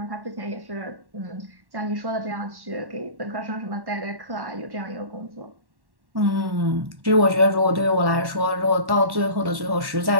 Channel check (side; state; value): left; late; 1.1 ms